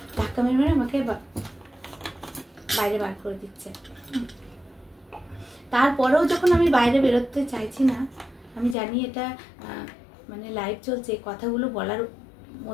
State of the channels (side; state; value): right; drops out; at 8.8 s